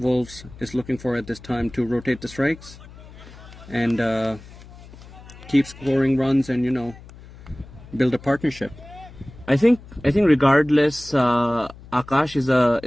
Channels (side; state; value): left; noise; hum, 19 dB below the sound